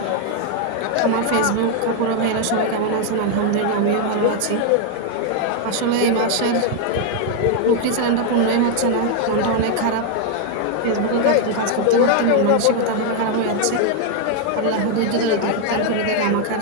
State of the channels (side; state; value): both; different; correlation 0.00